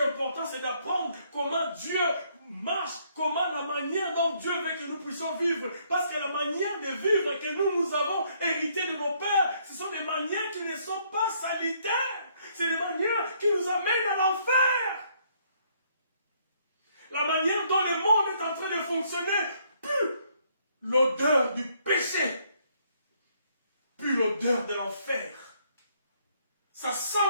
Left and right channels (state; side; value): inverted; both; correlation -0.68